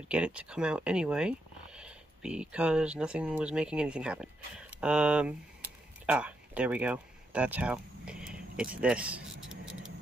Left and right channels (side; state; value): both; normal; correlation 0.81